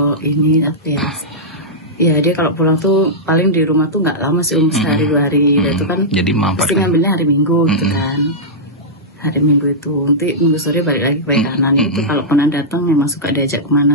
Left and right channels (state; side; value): normal; both; correlation -0.11